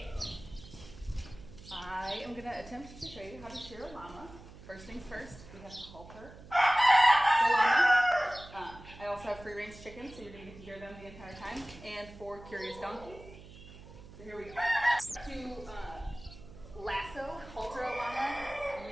I am going to attempt to show you how to shear a llama. First things first, we have to halter the llama. I also have free range chickens, so you're going to get to hear them the entire time, and 4 curious donkeys. So here we go. To lasso, halter a llama,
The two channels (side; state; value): right; noise; hum, 18 dB below the sound